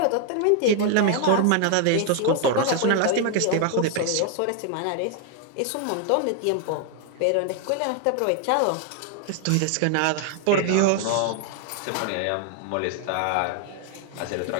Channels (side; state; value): both; different; correlation 0.00